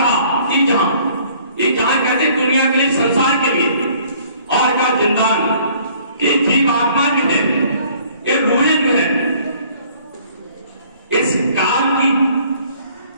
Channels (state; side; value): inverted; both; correlation -0.57